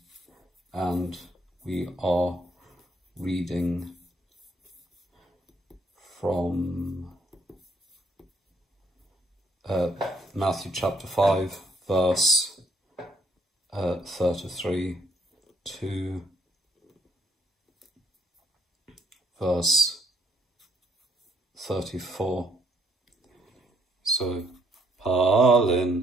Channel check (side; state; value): both; normal; correlation 0.68